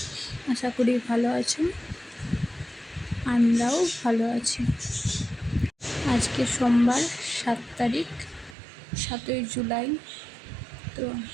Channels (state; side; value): drops out; left; at 8.6 s